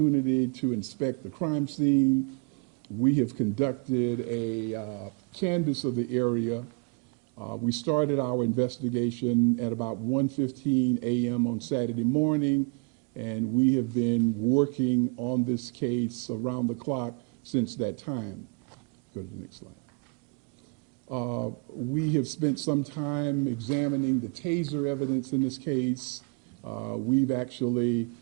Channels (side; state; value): left; quieter; 33.5 dB